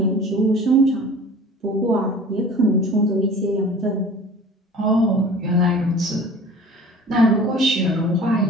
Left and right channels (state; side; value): normal; both; correlation 0.43